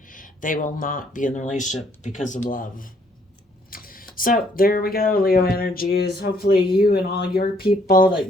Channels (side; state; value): both; normal; correlation 0.67